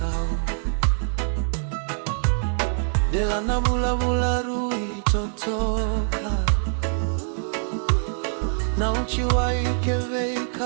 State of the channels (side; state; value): left; silent; digital silence